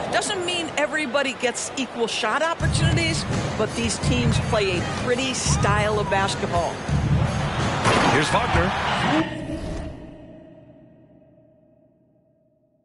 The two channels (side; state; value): both; identical; correlation 1.00